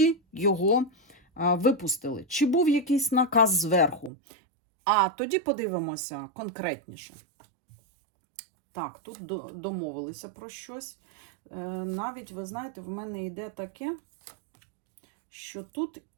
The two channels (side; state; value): left; drops out; at 4.1 s